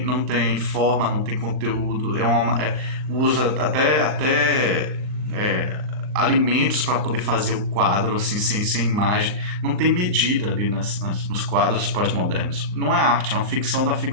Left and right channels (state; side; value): late; left; 38 ms